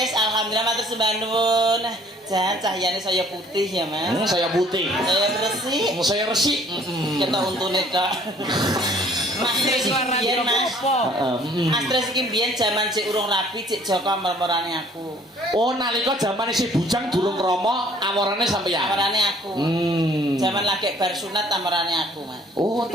alhamdulillah matur sembah nuwun. Jan cahyane saya putih ya, Mas. Saya putih. Saya resik. Saya resik. Kita untune Kak. Mas Tris biyen Mas. Mas Tris iki biyen jaman cek urung rapi, cek Joko mermorane aku. Oh, nalika jaman isih bujang durung romo, amorane sampeyan. Amorane aku. Jaman lagi bar sunat amorane aku, Mas. Oh,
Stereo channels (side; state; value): both; normal; correlation 0.57